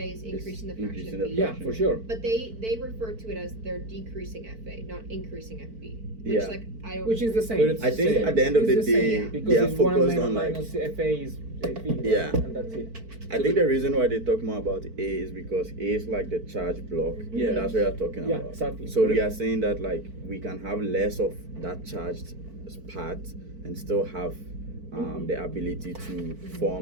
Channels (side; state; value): left; late; 4.5 ms